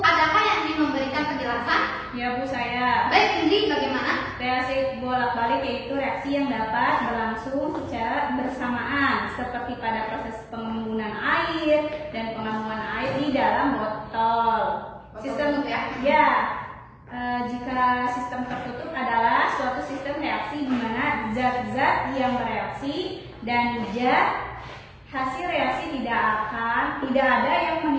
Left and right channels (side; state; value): both; identical; correlation 1.00